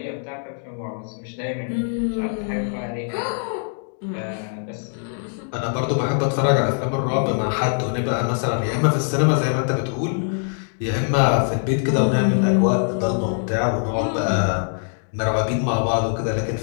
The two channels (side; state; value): right; silent; digital silence